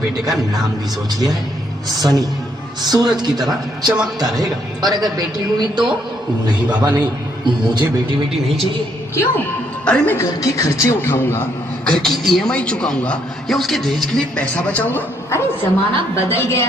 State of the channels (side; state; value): both; normal; correlation 0.71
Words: का नाम भी सोच लिया है, सनी। सूरज की तरह चमकता रहेगा। और अगर बेटी हुई तो? नहीं बाबा नहीं, मुझे बेटी बेटी नहीं चाहिए। क्यों? अरे मैं घर के खर्चे उठाऊंगा, घर की ईएमआई चुकाऊंगा या उसके दहेज के लिए पैसा बचाऊंगा। अरे जमाना बदल गया